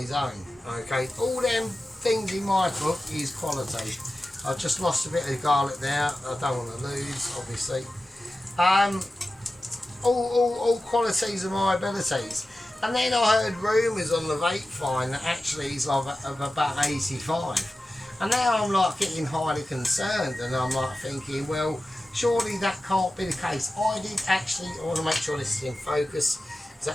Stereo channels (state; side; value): normal; both; correlation 0.94